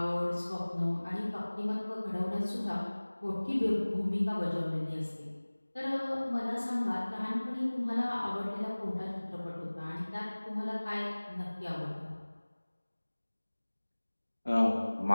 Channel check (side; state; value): both; inverted; correlation -1.00